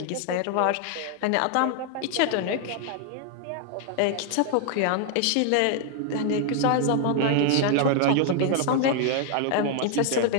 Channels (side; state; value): both; different; correlation 0.00